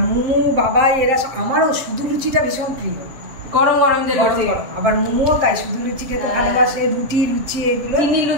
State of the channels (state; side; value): late; left; 7.6 ms